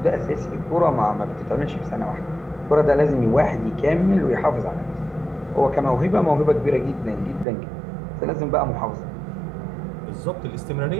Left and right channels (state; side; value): drops out; left; at 7.5 s